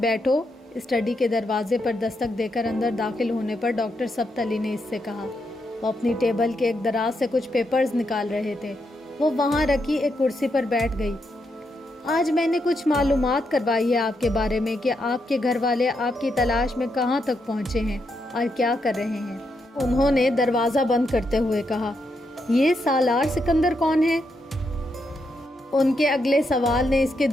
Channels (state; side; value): normal; both; correlation 0.81